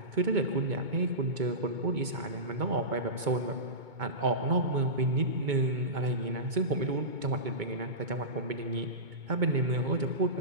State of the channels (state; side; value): late; left; 2.2 ms